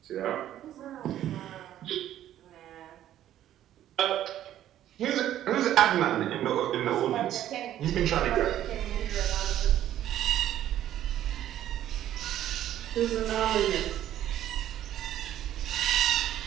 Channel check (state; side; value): quieter; left; 12.1 dB